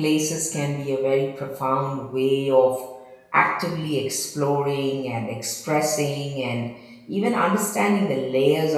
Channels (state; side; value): identical; both; correlation 1.00